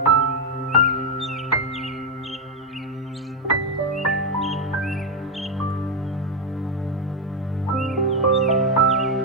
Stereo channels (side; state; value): both; normal; correlation 0.03